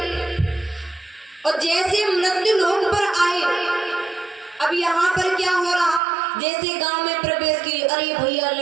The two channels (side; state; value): left; drops out; at 6.0 s